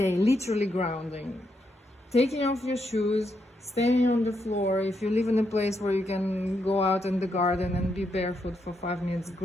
literally grounding, taking off your shoes, standing on the floor. If you live in a place where you can go out in the garden and be barefoot for 5 minutes,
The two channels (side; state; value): both; normal; correlation 0.80